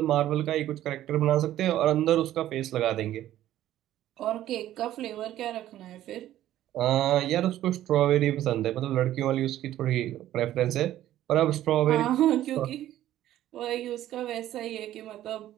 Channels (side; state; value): left; quieter; 13.1 dB